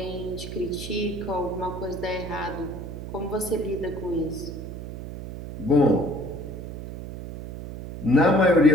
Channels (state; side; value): noise; right; hum, 9 dB below the sound